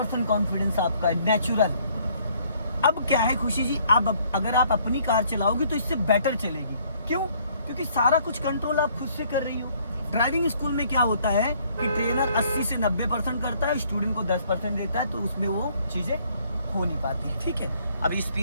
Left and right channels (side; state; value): both; inverted; correlation -0.63